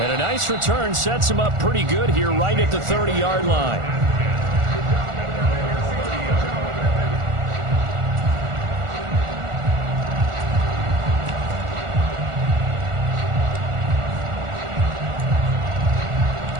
a nice return sets him up pretty good here right at the 30-yard line.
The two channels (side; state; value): left; late; 1.4 ms